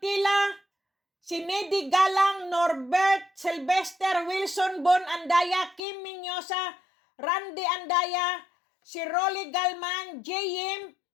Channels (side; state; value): right; drops out; at 5.8 s